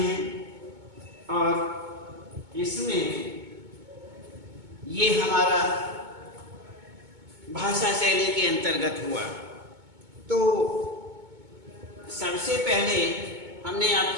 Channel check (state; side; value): late; left; 2.2 ms